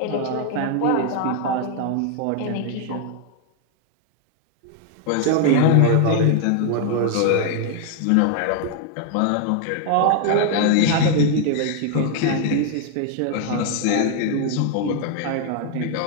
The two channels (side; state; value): both; different; correlation 0.00